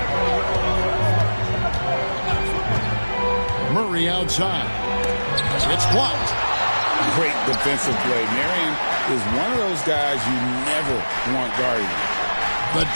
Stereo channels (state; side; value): inverted; both; correlation -1.00